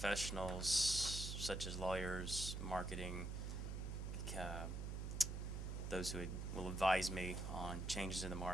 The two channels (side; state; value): right; noise; hum, 3 dB below the sound